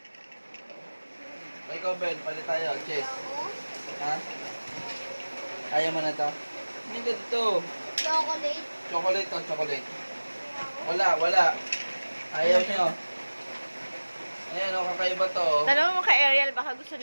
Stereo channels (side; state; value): both; inverted; correlation -1.00